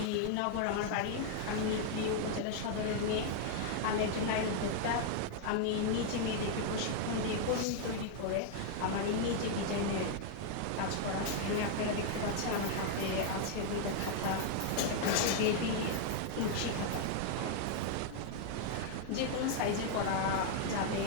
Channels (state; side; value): different; both; correlation 0.00